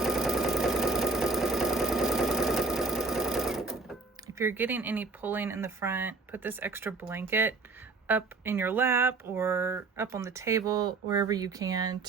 If you're getting any pulling in the front, put this extra blanket up in your lap or up on the table, wherever you can,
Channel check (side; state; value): left; quieter; 3.9 dB